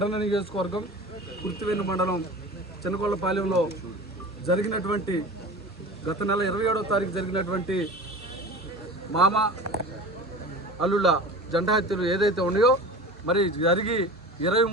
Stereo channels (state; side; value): normal; both; correlation 0.35